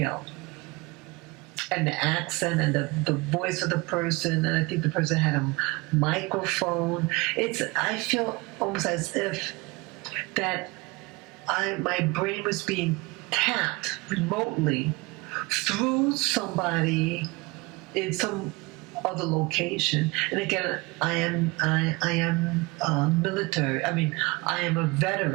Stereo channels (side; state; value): left; quieter; 24.5 dB